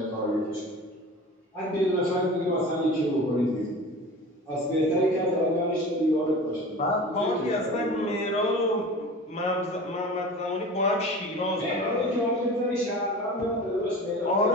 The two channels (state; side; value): normal; both; correlation 0.36